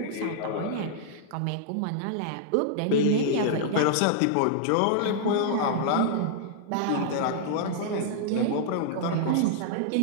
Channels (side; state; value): both; different; correlation -0.01